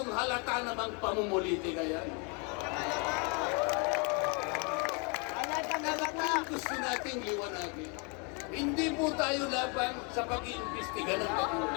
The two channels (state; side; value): quieter; right; 34.4 dB